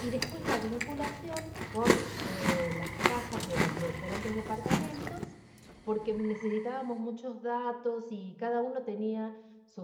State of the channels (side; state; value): both; identical; correlation 1.00